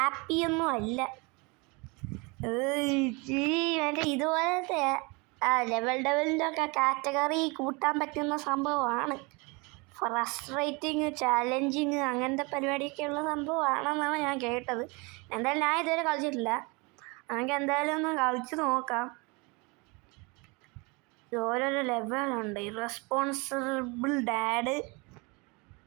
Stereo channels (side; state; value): left; quieter; 28.1 dB